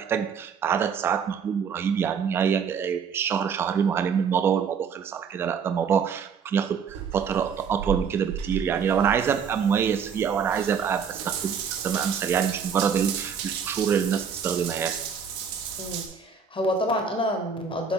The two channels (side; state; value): left; quieter; 6.6 dB